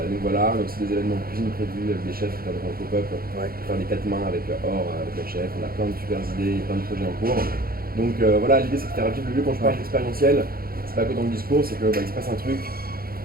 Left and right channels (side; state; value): left; late; 0.43 ms